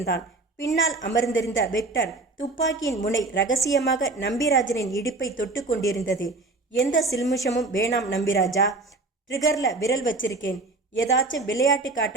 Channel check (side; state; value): left; quieter; 3.4 dB